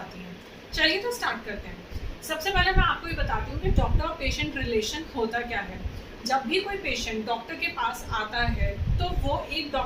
आती हैं। चलिए तो स्टार्ट करते हैं। सबसे पहले मैं आपको ये बताती हूँ कि डॉक्टर और पेशेंट रिलेशन होता क्या है। जब भी कोई पेशेंट डॉक्टर के पास आता है तो वो एक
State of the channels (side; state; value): both; identical; correlation 1.00